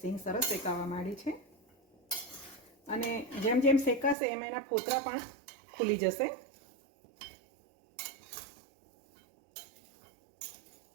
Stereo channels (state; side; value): drops out; left; at 4.2 s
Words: સરસ શેકાવા માંડી છે અને જેમ જેમ શેકાશે એમ એના ફોતરા પણ ખુલી જશે.